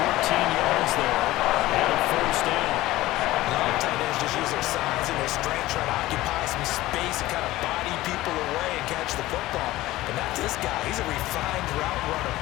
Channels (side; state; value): right; quieter; 17.1 dB